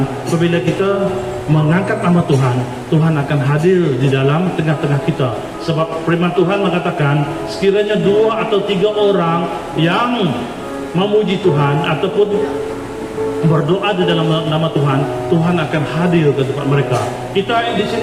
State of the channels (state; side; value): identical; both; correlation 1.00